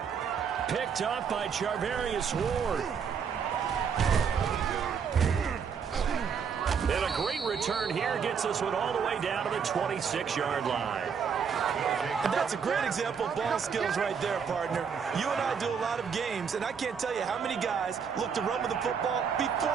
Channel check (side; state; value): left; quieter; 6.7 dB